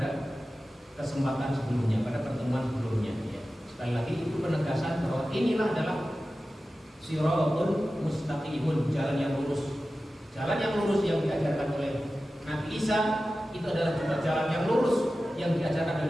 kesempatan sebelumnya, pada pertemuan sebelumnya ya. Sekali lagi itu penegasan bahwa inilah adalah shiratun mustaqimun, jalan yang lurus. Jalan yang lurus yang diajarkan oleh Nabi Isa itu adalah juga jalan yang lurus yang diajarkan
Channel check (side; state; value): both; normal; correlation 0.94